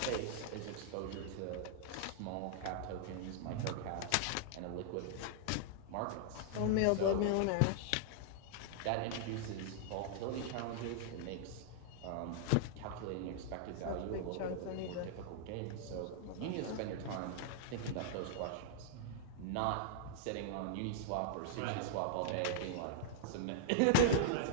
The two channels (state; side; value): different; both; correlation -0.01